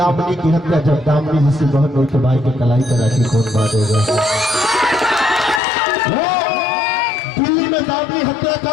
की हत्या, जब दामनी जिसे बहन हुई तो भाई के कलाई पर राखी कौन बांधेगा। दिल्ली में दामनी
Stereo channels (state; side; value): drops out; right; at 5.6 s